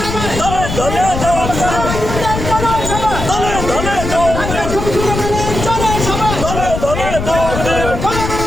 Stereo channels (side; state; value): left; noise; rumble, 5 dB below the sound